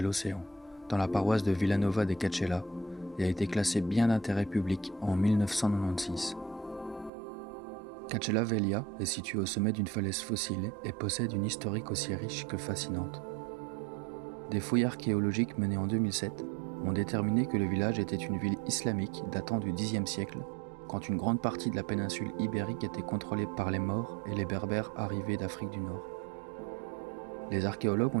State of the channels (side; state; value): left; drops out; at 7.1 s